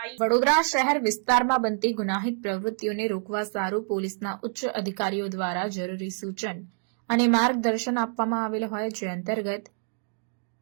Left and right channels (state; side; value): silent; left; 57 dB below the other